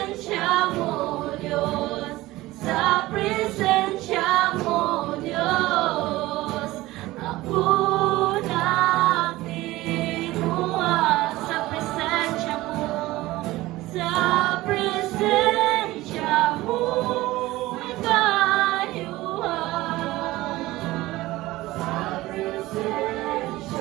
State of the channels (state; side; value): quieter; left; 18.1 dB